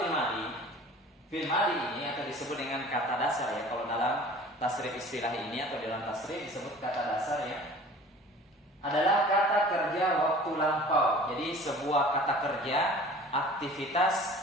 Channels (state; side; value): normal; both; correlation 0.45